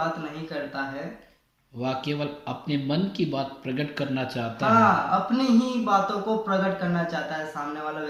नहीं करता है, वह केवल अपने मन की बात प्रकट करना चाहता है। हाँ, अपनी ही बातों को प्रकट करना चाहता है सामने वाला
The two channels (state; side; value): identical; both; correlation 1.00